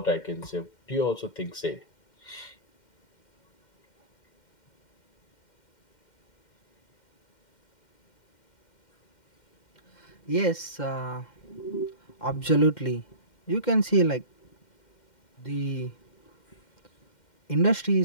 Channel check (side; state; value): right; late; 2.1 ms